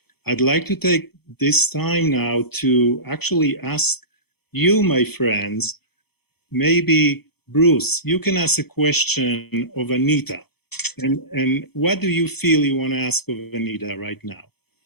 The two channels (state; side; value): late; right; 0.96 ms